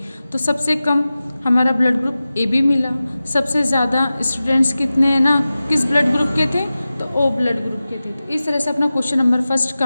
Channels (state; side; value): inverted; both; correlation -0.95